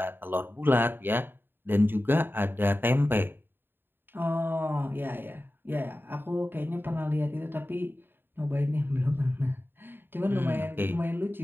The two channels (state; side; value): late; left; 0.099 ms